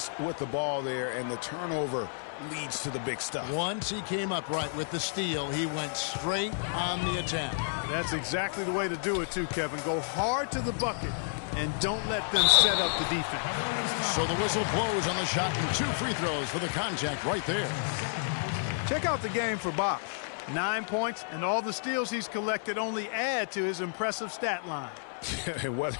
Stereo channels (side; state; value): right; silent; 57 dB below the other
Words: with the ball there, and the turnover leads to the big stuff. Once he came up right with the steal, he went straight on the attack. That's exactly the way to do it too, Kevin. Go hard to the bucket and don't let them set up the defense. So the whistle blows on the shot and 2 free throws for the contact right there. Check out the game for Bosch. 9 points, and all the steals he's collected only add to his impressive stat line. Whether